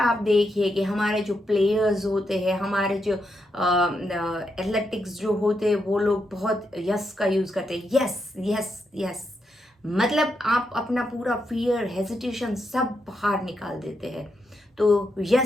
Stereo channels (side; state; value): both; normal; correlation 0.82